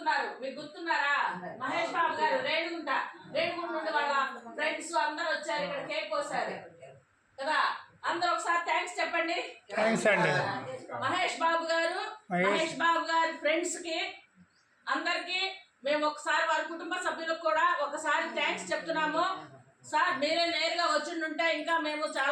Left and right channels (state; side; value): identical; both; correlation 1.00